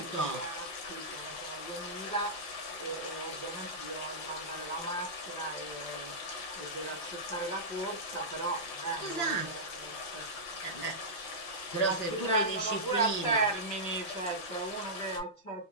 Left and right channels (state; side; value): late; right; 5.9 ms